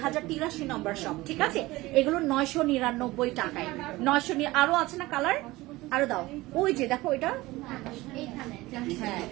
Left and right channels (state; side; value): quieter; left; 19.5 dB